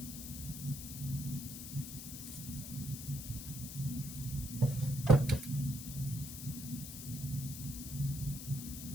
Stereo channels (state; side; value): noise; left; hiss, 9 dB below the sound